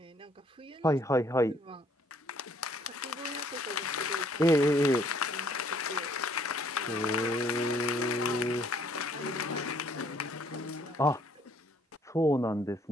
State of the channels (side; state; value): both; normal; correlation 0.63